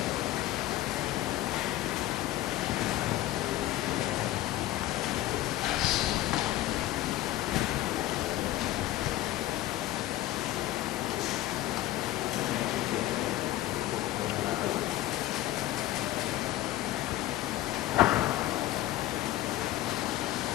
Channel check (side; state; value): right; quieter; 15.1 dB